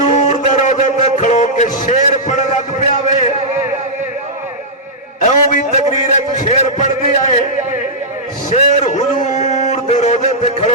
دے روزے تے کھڑو کے شیر پڑھ لگ پیا وے ایوں بھی تقریر ہے شیر پڑھ دیا ہے شیر حضور دے روزے تے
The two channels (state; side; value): normal; both; correlation -0.11